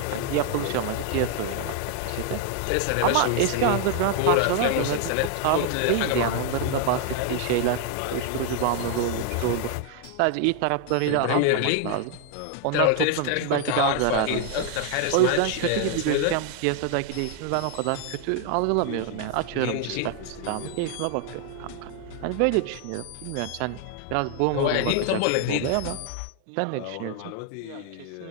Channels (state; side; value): different; both; correlation 0.00